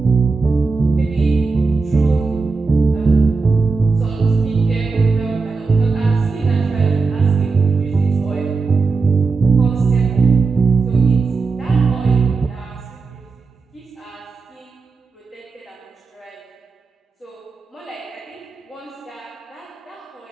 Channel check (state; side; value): quieter; left; 4.4 dB